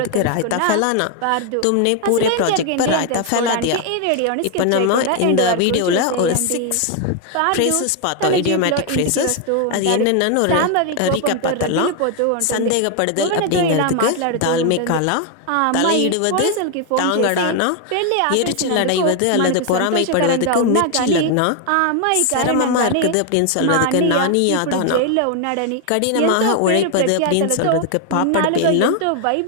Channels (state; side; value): different; both; correlation 0.01